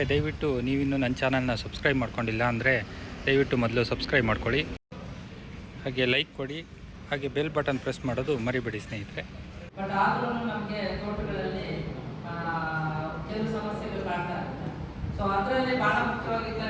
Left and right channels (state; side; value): identical; both; correlation 1.00